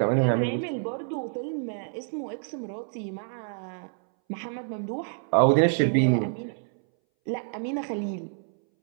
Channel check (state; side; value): silent; left; 60 dB below the other